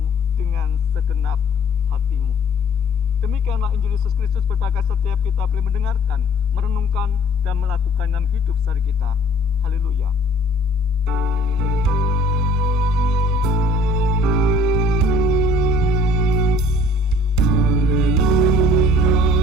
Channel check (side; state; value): both; normal; correlation 0.55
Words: dengan segenap hatimu." Demikianlah Injil Yesus Kristus, berbahagia setiap kita boleh mendengarkan, merenungkan, dan melakukan dalam hidup sehari kita. Haleluya.